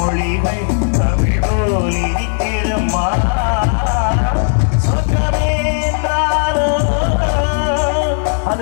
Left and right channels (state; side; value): silent; right; digital silence